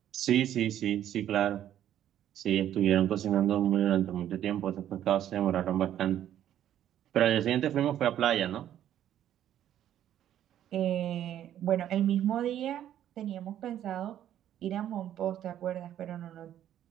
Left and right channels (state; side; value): quieter; left; 11.2 dB